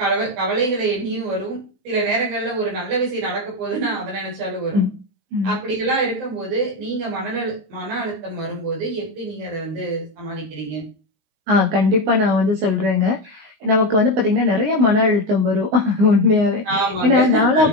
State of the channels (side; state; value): left; late; 19 ms